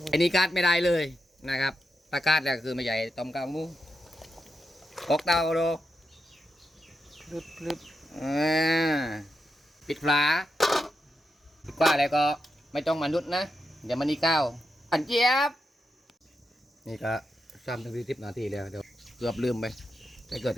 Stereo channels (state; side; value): normal; both; correlation 0.86